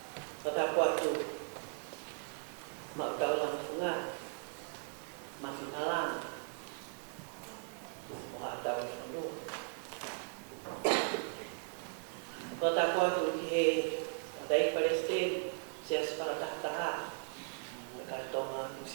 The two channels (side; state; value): left; silent; 53 dB below the other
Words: Wata koe tu. Mau tau lang funga, mafinalang, mga tau funo. Kota ko tu he, dai Palestin, siya para tahtaha, nagkatonga tu